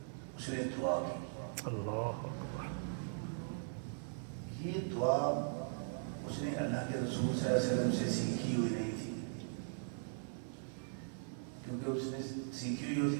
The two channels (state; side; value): silent; left; 51 dB below the other